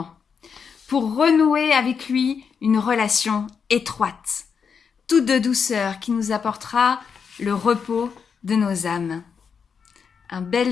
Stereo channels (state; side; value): quieter; right; 6.3 dB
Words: pour renouer avec lui une relation étroite, toute de douceur qui nous apportera le repos de nos âmes. Un